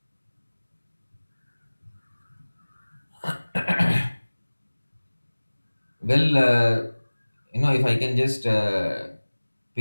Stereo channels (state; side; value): inverted; both; correlation -1.00